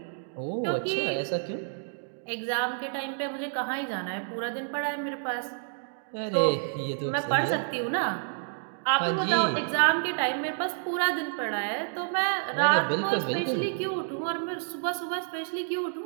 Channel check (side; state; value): left; silent; digital silence